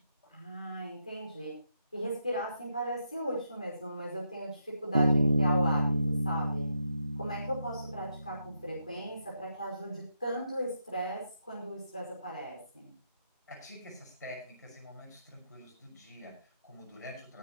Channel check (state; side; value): inverted; both; correlation -0.82